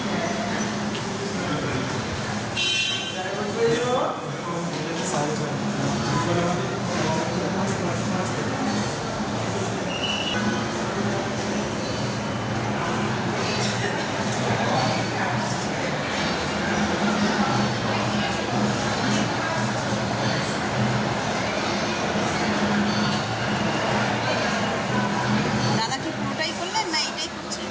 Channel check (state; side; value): identical; both; correlation 1.00